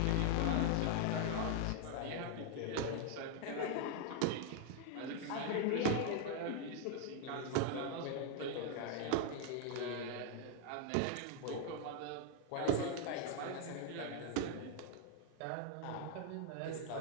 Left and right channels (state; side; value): different; both; correlation 0.00